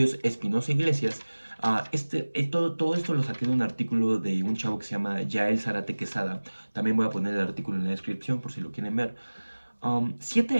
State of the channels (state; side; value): inverted; both; correlation -1.00